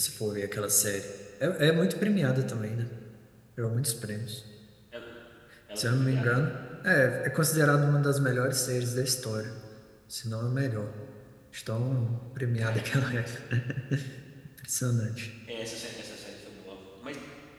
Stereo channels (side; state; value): both; identical; correlation 1.00